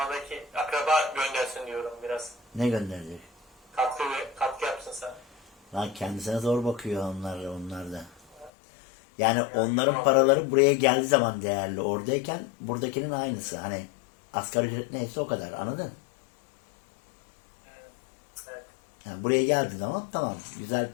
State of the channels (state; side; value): drops out; right; at 8.5 s